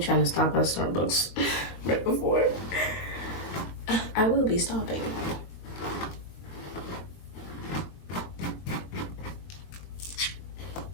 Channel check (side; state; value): right; late; 22 ms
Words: to stop at Starbucks right before. I will be stopping.